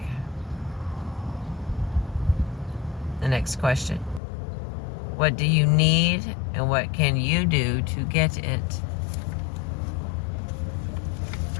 The next question, what do you need and what can you do to get it?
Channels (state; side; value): drops out; right; at 4.2 s